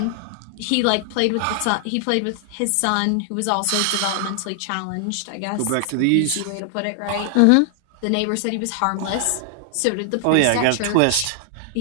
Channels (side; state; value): both; different; correlation 0.00